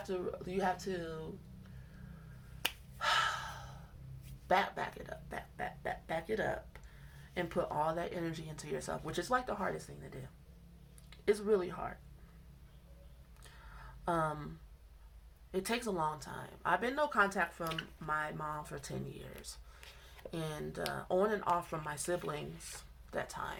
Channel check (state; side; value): identical; both; correlation 1.00